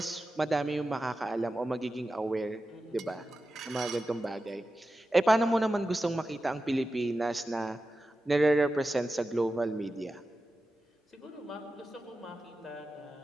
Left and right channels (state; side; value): normal; both; correlation 0.92